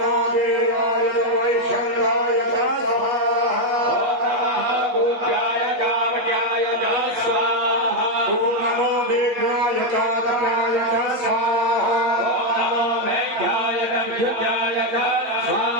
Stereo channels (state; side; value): late; left; 8.4 ms